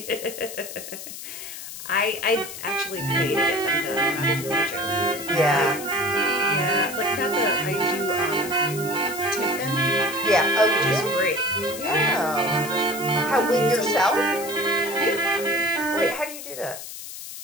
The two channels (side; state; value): left; noise; hiss, 11 dB below the sound